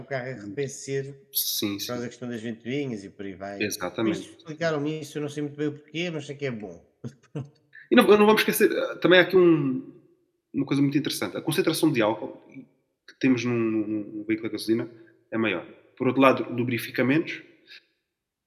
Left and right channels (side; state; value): both; identical; correlation 1.00